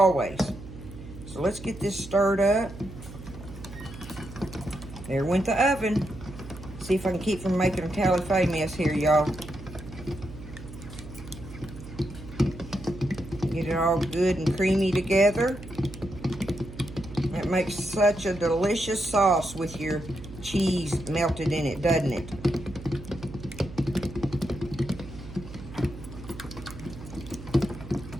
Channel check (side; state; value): right; noise; hum, 14 dB below the sound